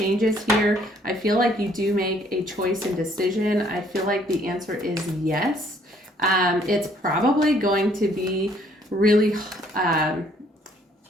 here. I feel like you do make a choice and decision. I feel like the answer is yes. It's probably going to be really,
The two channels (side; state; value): both; normal; correlation 0.63